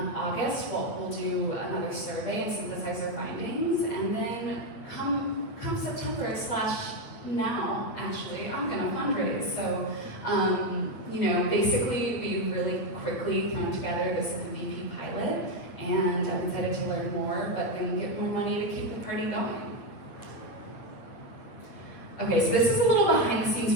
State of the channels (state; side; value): late; right; 8.9 ms